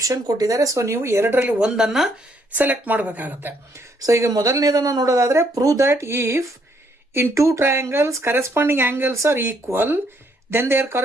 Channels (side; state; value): both; normal; correlation 0.70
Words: ಕೊಟ್ಟಿದ್ದಾರೆ. ಸೊ ನೀವು 2ರಲ್ಲಿ ಒಂದನ್ನ ಸೆಲೆಕ್ಟ್ ಮಾಡಬೇಕಾಗತ್ತೆ. ಸೊ ಈಗ ಮೊದಲನೇದನ್ನ ನೋಡೋದಾದ್ರೆ, prove that if in two triangles corresponding angles are equal, then their